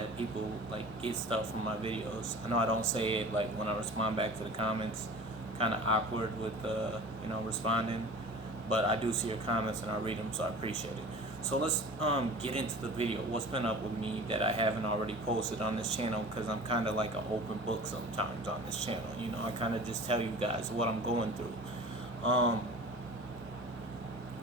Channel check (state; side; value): normal; both; correlation 0.40